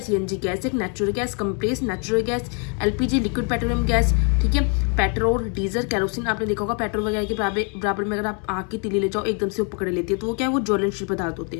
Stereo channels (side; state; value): right; quieter; 38.4 dB